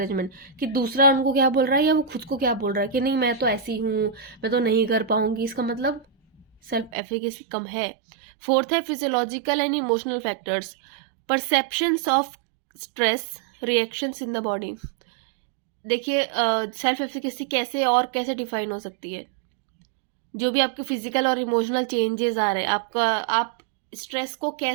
कि दूसरा उनको क्या बोल रहा है या वो खुद को क्या बोल रहा है कि नहीं मैं तो ऐसी हूँ, मैं तो नहीं कर पाऊंगी, इसका मतलब सेल्फ एफिकेसी कम है। फोर्थ है physiological and emotional factors, perceptions of stress, reactions in the body. देखिए, सेल्फ एफिकेसी कैसे डिफाइन हो सकती है? जो भी आपके फिजिकल और इमोशनल चेंजेस आ रहे हैं, आप स्ट्रेस को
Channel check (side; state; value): left; drops out; at 6.9 s